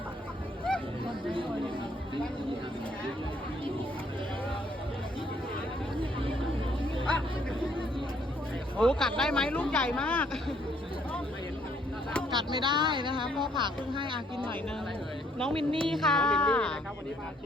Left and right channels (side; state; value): both; normal; correlation 0.66